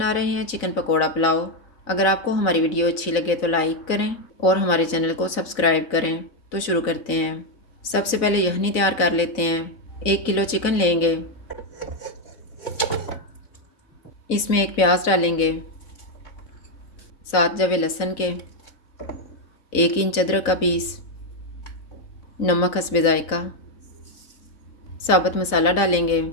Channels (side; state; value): right; late; 4.0 ms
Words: रहे हैं चिकन पकोड़ा पुलाव। अगर आपको हमारी वीडियो अच्छी लगे तो लाइक करें और हमारे चैनल को सब्सक्राइब करें। तो शुरू करते हैं। सबसे पहले यखनी तैयार कर लेते हैं। 1 किलो चिकन लेंगे। इसमें एक प्याज डालेंगे, 7 जवे लहसुन के, 1 इंच अदरक का पीस, नमक हस्बे जायका, साबुत मसाला डालेंगे।